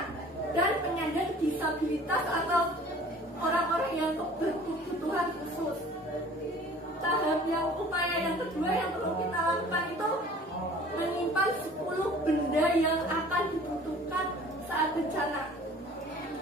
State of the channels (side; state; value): both; normal; correlation 0.48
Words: dan penyandang disabilitas atau orang-orang yang berkebutuhan khusus. Tahap yang upaya yang kedua yang perlu kita lakukan itu menyimpan 10 benda yang akan dibutuhkan saat bencana.